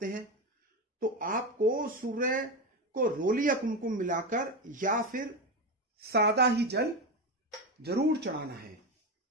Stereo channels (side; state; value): both; normal; correlation 0.16